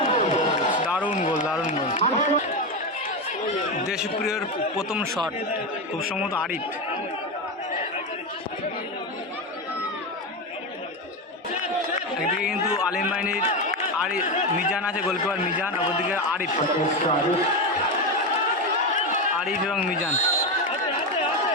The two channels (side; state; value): both; normal; correlation 0.15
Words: দারুণ গোল। দেশপ্রিয়র প্রথম শট খুব সম্ভবত আরিফ। একদিকে কিন্তু আলিম বাহিনীর মিজান আছে, গোলকিপার মিজান, অপরদিকে আরিফ এবং মিজান।